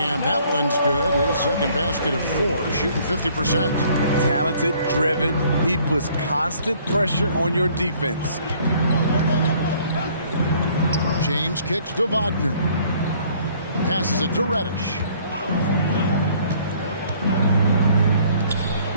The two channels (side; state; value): both; inverted; correlation -0.59